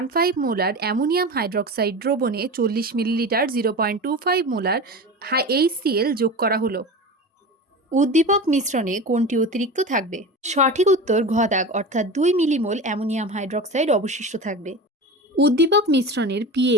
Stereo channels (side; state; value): both; normal; correlation 0.29